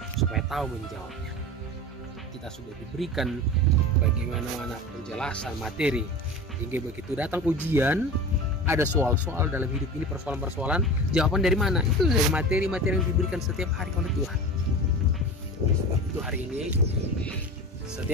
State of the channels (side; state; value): both; normal; correlation 0.32